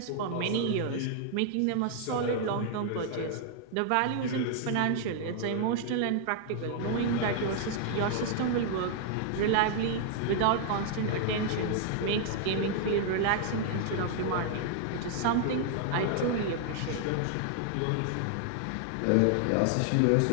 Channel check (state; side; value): different; both; correlation 0.00